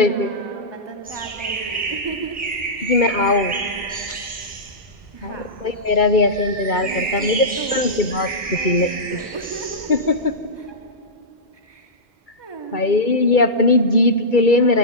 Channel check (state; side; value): normal; both; correlation -0.13